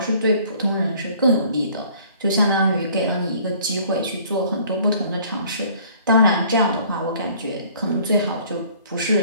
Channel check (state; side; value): inverted; both; correlation -0.55